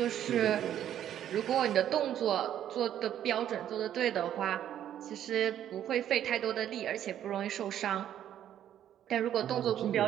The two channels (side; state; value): left; quieter; 10.8 dB